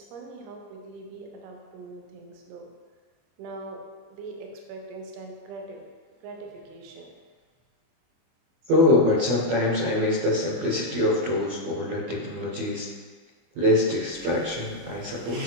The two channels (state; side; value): late; left; 25 ms